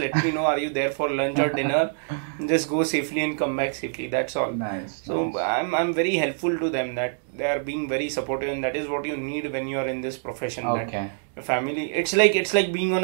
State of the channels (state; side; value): silent; left; digital silence